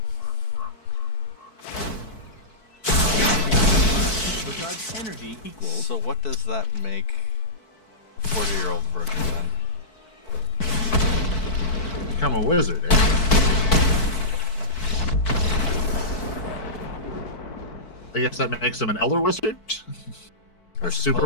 Recharge energy equals. So what does that make a 40-year-old version then? Become a wizard, eh? I guess that makes him an elder wizard? Or super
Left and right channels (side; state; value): right; late; 4.6 ms